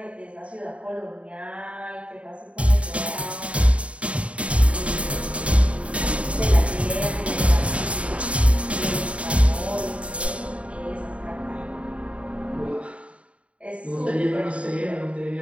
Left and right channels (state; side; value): late; left; 0.063 ms